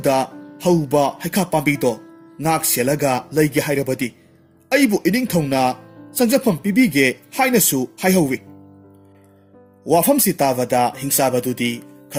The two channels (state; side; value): identical; both; correlation 1.00